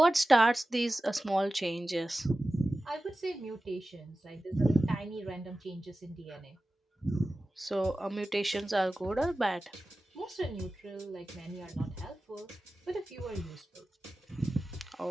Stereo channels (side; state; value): both; normal; correlation 0.95